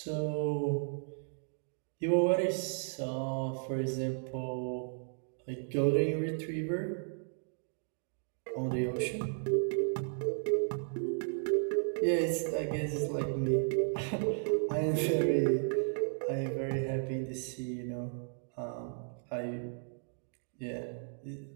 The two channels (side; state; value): left; silent; digital silence